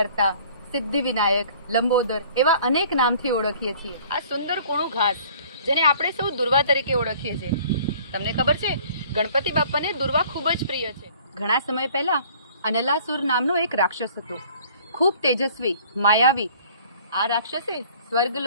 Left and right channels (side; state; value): both; inverted; correlation -0.53